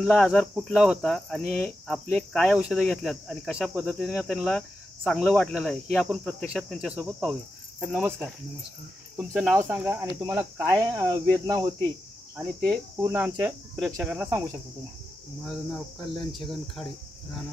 आजार कुठला होता आणि आपले काय औषधं घेतल्यात आणि कशा पद्धतीने त्यांना चांगलं वाटलेलं आहे हे आपण प्रत्यक्षात त्यांच्यासोबत पाहूया। तर नमस्कार। नमस्कार। तुमचं नाव सांगा आणि तुम्हाला काय वेदना होती आणि ते पूर्ण आमच्या प्रेक्षकांना सांगू शकता तुम्ही। माझं नाव कल्याण छगन खाडे,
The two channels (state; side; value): normal; both; correlation 0.89